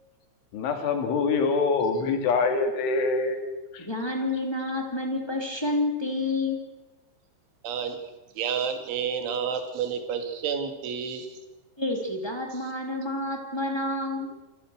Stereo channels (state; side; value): normal; both; correlation -0.06